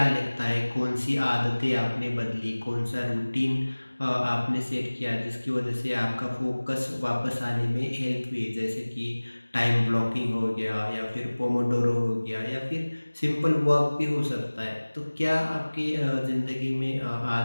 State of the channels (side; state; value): both; inverted; correlation -1.00